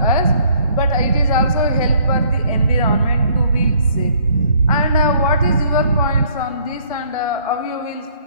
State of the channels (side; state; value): both; inverted; correlation -0.62